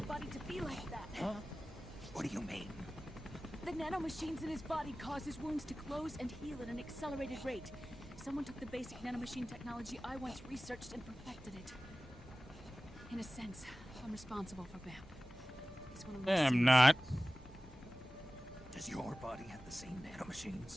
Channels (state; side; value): normal; both; correlation 0.97